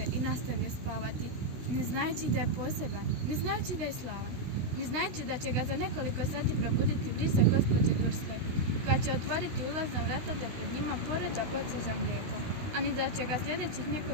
i nastavio spavati, ne znajući da je poseban, ne znajući da je slavan, ne znajući da će ga za nekoliko sati probuditi brisa gospođe Dursley, koja će otvoriti ulazna vrata da pred njima poređa boce za mlijeko, a ni da će ga sljedećih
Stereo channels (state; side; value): late; left; 16 ms